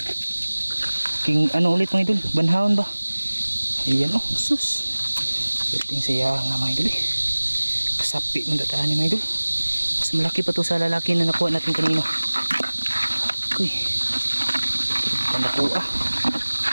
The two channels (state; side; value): inverted; both; correlation -1.00